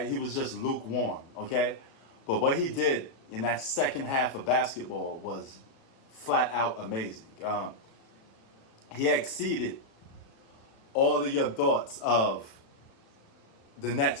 he was just lukewarm. Okay, but what he did in that second half of basketball was flat out amazing. He exceeded all of your thoughts of the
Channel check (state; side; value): late; right; 36 ms